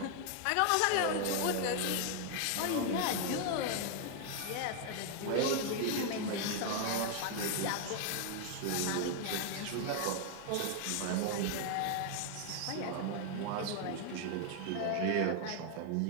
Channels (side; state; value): both; different; correlation 0.00